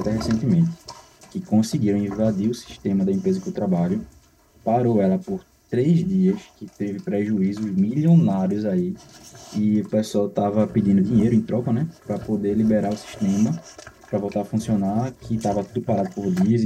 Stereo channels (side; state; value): both; identical; correlation 1.00